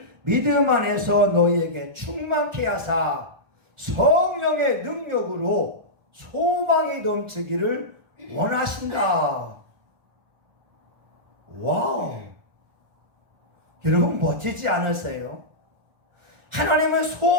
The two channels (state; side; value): late; left; 1.4 ms